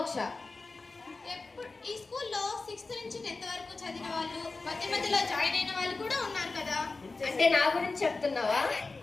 ఈ స్కూల్లో 6th నుంచి 10th వరకు చదివిన వాళ్ళు, మధ్య మధ్యలో జాయిన్ అయిన వాళ్ళు కూడా ఉన్నారు కదా. అంటే నా గురించి చెప్తున్నావా?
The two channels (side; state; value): right; quieter; 3.7 dB